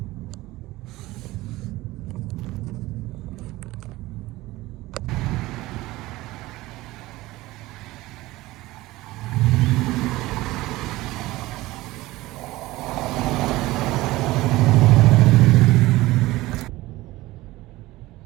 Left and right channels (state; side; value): quieter; left; 18.5 dB